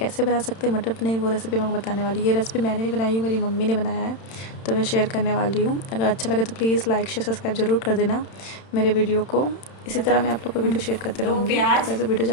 बना सकते हैं मटर पनीर, वो रेसिपी मैं आपको बताने वाली हूँ। ये रेसिपी मैंने नहीं बनाई हूँ, मेरी मम्मी ने बनाया है, तो मैं शेयर करने वाली हूँ। अगर अच्छा लगे तो प्लीज़ लाइक शेयर सब्सक्राइब ज़रूर कर देना मेरे वीडियो को। इसी तरह मैं आप लोग को वीडियो शेयर करते रहूँगी। तो वैसे वीडियो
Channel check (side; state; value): right; late; 31 ms